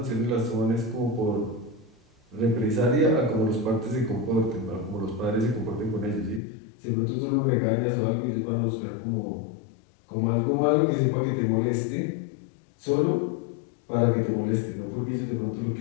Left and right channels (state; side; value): drops out; right; at 6.4 s